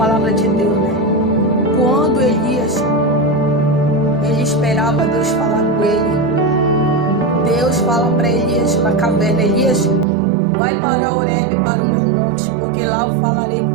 de Deus, né? Quando Elias, ele esperava Deus falar com ele, Deus fala para Elias na caverna: Elias, vai para Horebe, para o meu monte, porque lá eu falarei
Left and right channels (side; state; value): left; drops out; at 10.1 s